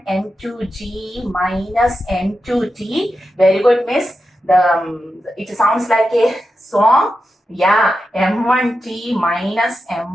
m2g minus m2t. Very good, miss. It sounds like a song. Yeah, m1t minus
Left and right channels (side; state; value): both; normal; correlation 0.90